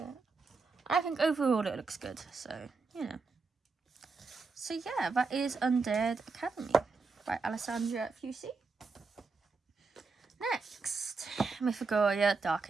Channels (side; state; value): left; quieter; 4.3 dB